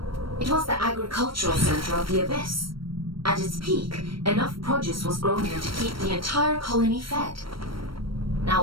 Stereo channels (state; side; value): late; left; 0.74 ms